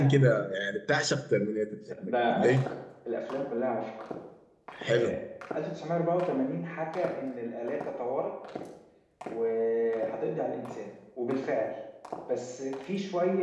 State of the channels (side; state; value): both; identical; correlation 1.00